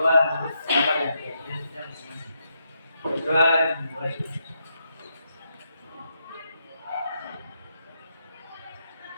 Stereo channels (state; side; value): inverted; both; correlation -0.81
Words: menurut bersama dan keyakinan kita masing-masing. Berdoa dimulai.